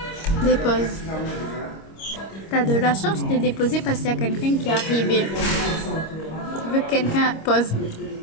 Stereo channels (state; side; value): late; right; 26 ms